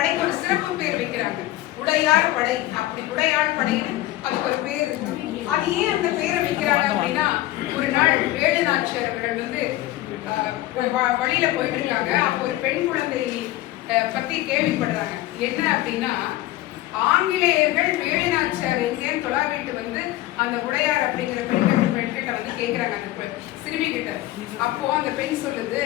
ஒரு சிறப்பு பேர் வைக்கிறாங்க, உடையார் படை. அப்படி உடையார் படைன்னு அதுக்கு ஒரு பேர் இருக்கு. அது ஏன் அந்த பேரை வைக்கிறாங்க அப்படின்னா, ஒரு நாள் வேலு நாச்சியார் அவர்கள் வந்து வழியில போயிட்டு இருக்காங்க. அப்போ ஒரு பெண் குழந்தை பத்தி கேள்விப்படுறாங்க. என்ன அப்படின்னா, ஆங்கிலேயர்கள் வேலு நாச்சியார் எங்கேன்னு தொலாவிட்டு வந்து அந்த உடையார் அப்படிங்கிற பெண்கிட்ட வந்து கேட்கிறாங்க அந்த சிறுமி கிட்ட. அப்போ அந்த பெண் சொல்லுது,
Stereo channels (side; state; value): right; quieter; 16.2 dB